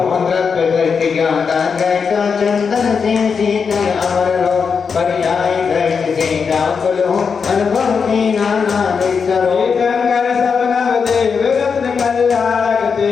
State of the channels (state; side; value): quieter; right; 5.8 dB